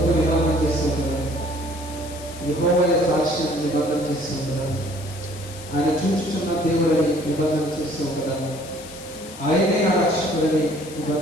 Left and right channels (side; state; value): left; noise; hiss, 16 dB below the sound